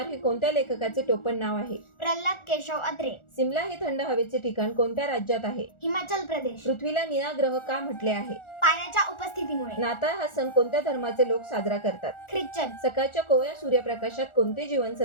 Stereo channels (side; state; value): right; late; 1.4 ms